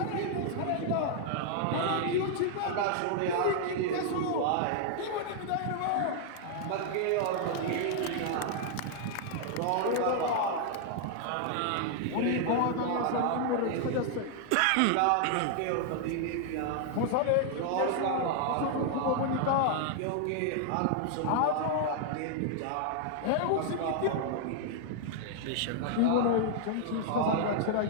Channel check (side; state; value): both; different; correlation 0.00